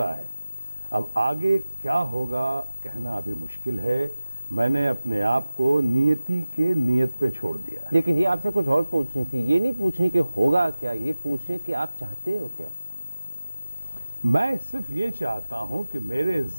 है। अब आगे क्या होगा कहना अभी मुश्किल है। मैंने अपने आप को नियति के नियत पे छोड़ दिया है। लेकिन ये आपसे कुछ और पूछनी थी, ये नहीं पूछनी कि होगा क्या, ये पूछे कि आप चाहते हो क्या? मैं सिर्फ ये चाहता हूं कि मेरे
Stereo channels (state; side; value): inverted; both; correlation -0.96